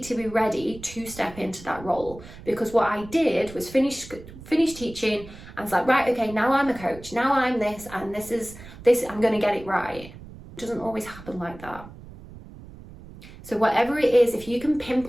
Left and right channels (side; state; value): right; noise; rumble, 17 dB below the sound